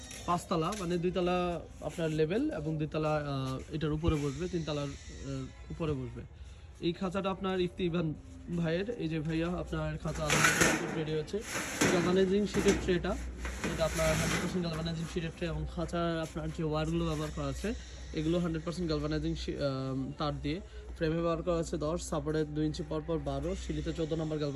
5 তলা, মানে 2 তলা আপনার লেভেল এবং 2 তলা এটার উপরে বসবে, 3 তলার উপরে বসবে। এই খাঁচাটা আপনার ইফতিবান ভাইয়ের, এই যে ভাইয়া আপনার খাঁচা আলহামদুলিল্লাহ রেডি হয়েছে। গালভানাইজিং শিটের ট্রেটা, এটা আপনার 100% গালভানাইজিং শিটের ট্রে এবং খাঁচার আপনার যে ওয়্যারগুলো ব্যবহার করা আছে এগুলো 100% গালভানাইজিং তার দিয়ে। ফ্রেমে ব্যবহার করা আছে 10, সাপোর্টে 2 ইঞ্চি পর 12, সিলিতে 14 নম্বর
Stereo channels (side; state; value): both; identical; correlation 1.00